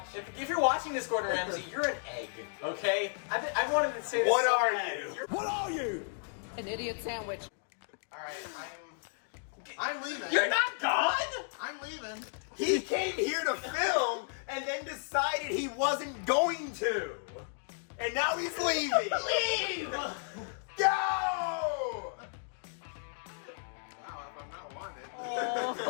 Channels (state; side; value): silent; right; digital silence